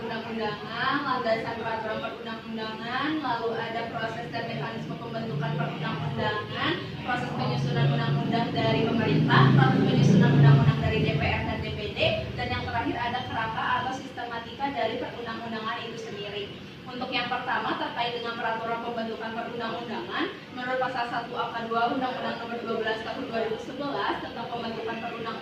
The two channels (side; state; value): both; identical; correlation 1.00